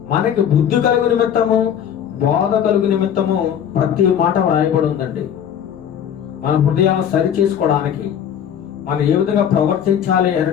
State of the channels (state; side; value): quieter; right; 9.0 dB